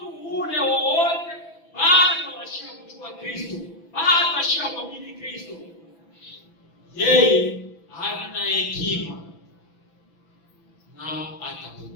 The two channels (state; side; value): late; right; 6.0 ms